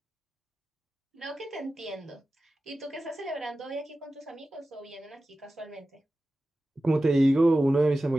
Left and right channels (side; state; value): both; normal; correlation 0.95